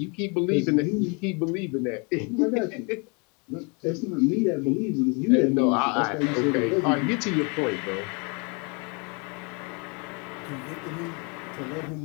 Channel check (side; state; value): right; quieter; 33.0 dB